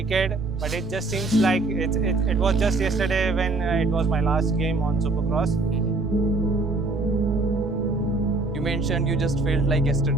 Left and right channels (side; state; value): left; quieter; 3.3 dB